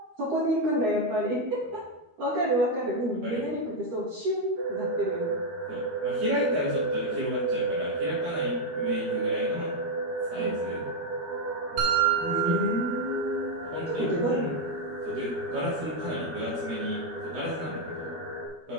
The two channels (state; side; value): late; left; 13 ms